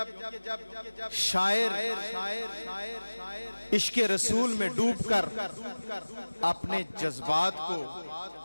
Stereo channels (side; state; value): both; inverted; correlation -1.00